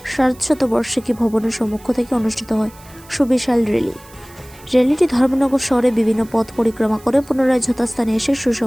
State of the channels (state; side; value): noise; right; hiss, 24 dB below the sound